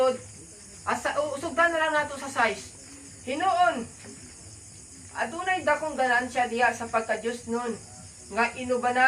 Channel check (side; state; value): both; identical; correlation 1.00